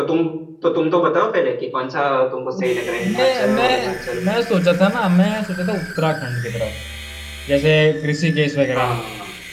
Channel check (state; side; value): identical; both; correlation 1.00